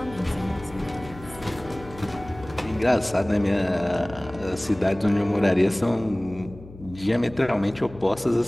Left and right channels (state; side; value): noise; left; hum, 18 dB below the sound